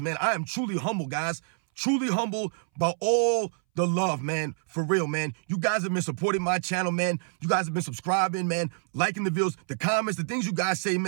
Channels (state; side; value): silent; left; 60 dB below the other